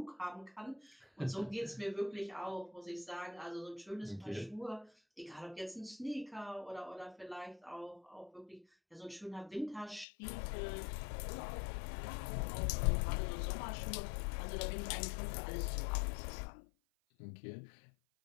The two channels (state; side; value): drops out; right; at 10.1 s